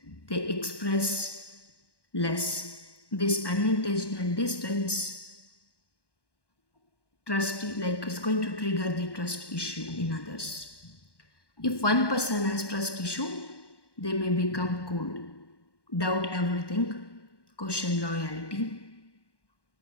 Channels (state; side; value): late; right; 1.1 ms